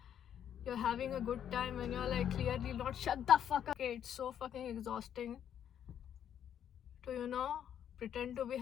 having a good time when you're like clearly not. Shut the fuck up. Okay, it's so fucking exhausting to pretend to be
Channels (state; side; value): quieter; right; 9.5 dB